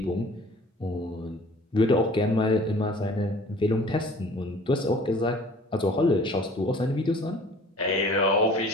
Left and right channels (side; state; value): both; normal; correlation 0.49